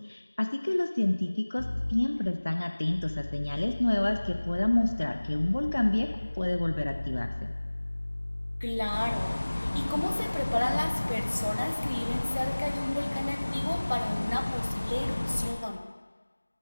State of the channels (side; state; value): both; inverted; correlation -1.00